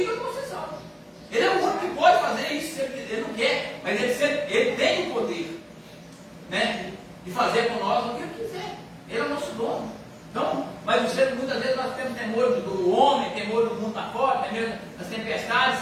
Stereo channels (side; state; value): both; identical; correlation 1.00